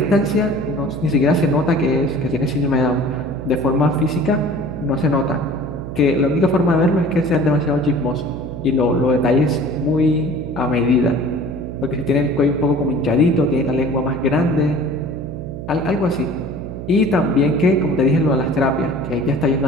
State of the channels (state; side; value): noise; right; hum, 9 dB below the sound